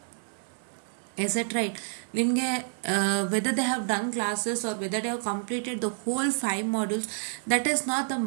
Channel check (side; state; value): left; silent; digital silence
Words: Is it right? ನಿಮಗೆ whether they have done classes or whether they have completed the whole 5 modules, that is not the